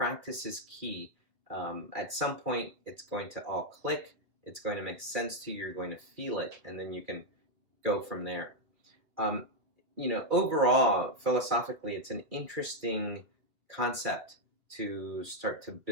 is key. At some point, it's going to all click. It's going to make sense to you. You're going to feel it, and then you can go from there. Um, Overall, philosophically, it's an interesting concept to start to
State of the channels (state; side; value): late; left; 2.2 ms